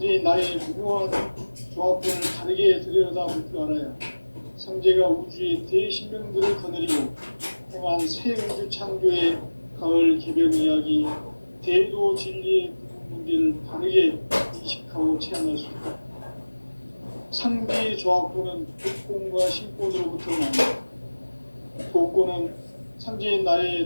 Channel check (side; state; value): both; inverted; correlation -1.00